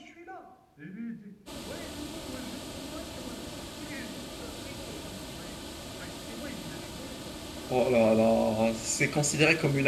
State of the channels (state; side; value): identical; both; correlation 1.00